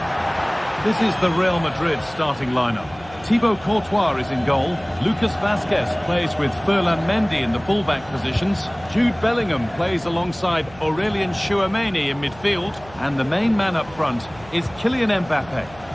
This is the Real Madrid starting lineup. Thibaut Courtois is in goal. Lucas Vazquez plays with Ferland Mendy in the fullback positions. Jude Bellingham plays alongside Aurelien Tchouameni in midfield. And the main man up front is Kylian Mbappe.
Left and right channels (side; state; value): right; noise; hum, 21 dB below the sound